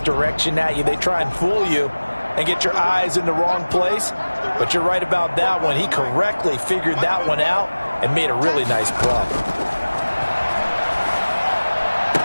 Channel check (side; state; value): both; inverted; correlation -1.00